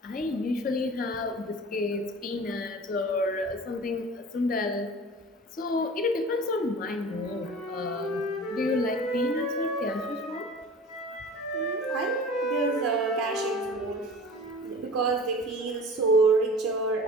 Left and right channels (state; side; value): normal; both; correlation 0.40